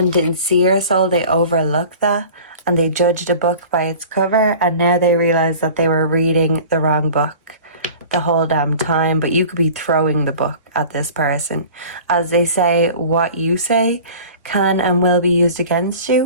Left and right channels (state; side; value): inverted; both; correlation -0.42